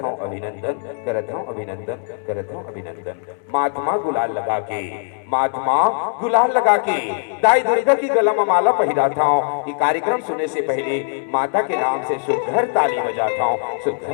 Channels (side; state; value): right; silent; 62 dB below the other